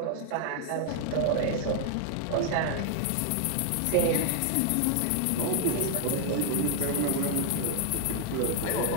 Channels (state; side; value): different; both; correlation 0.00